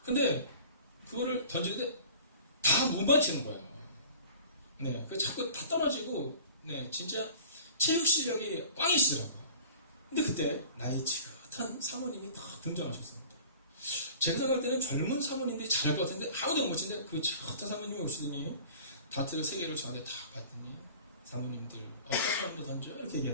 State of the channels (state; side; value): inverted; both; correlation -0.43